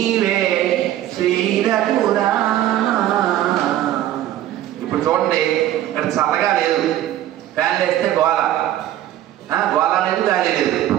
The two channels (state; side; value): quieter; left; 12.9 dB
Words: శ్రీరఘురా. ఇప్పుడు చూడండి, ఇక్కడ చల్లగా లేదు, ఫ్యాన్లు వేస్తే గోల, గోల లేదు, గాలి లేదు.